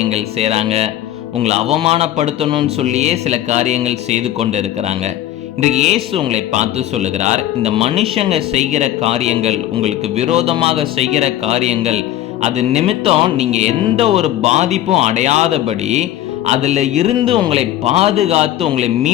செய்கிறாங்க, உங்களை அவமானப்படுத்தணும்னு சொல்லியே சில காரியங்கள் செய்து கொண்டு இருக்கிறாங்க. இன்றைக்கு இயேசு உங்களை பார்த்து சொல்லுகிறார், இந்த மனுஷங்க செய்கிற காரியங்கள், உங்களுக்கு விரோதமாக செய்கிற காரியங்கள், அது நிமித்தம் நீங்க எந்த ஒரு பாதிப்பும் அடையாதபடி அதுல இருந்து உங்களை பாதுகாத்து உங்களை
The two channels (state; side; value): quieter; right; 13.0 dB